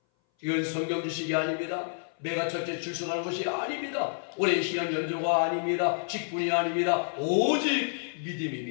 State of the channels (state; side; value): silent; right; 57 dB below the other